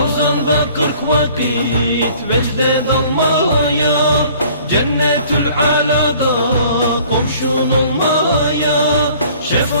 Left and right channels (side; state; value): both; inverted; correlation -0.53